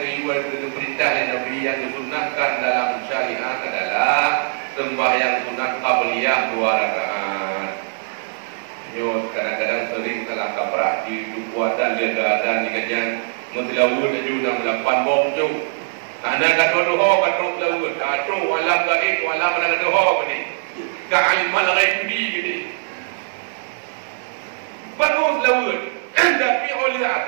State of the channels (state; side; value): silent; left; digital silence